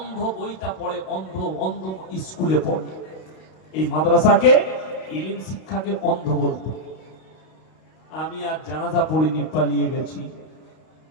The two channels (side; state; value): right; late; 32 ms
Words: বইটা পড়ে, অন্ধ অন্ধ স্কুলে পড়ে। এই মাদ্রাসাকে, ইলম শিক্ষাকে অন্ধ বলতো। আমি আর জানাজা পড়িনি, পালিয়ে গেছি।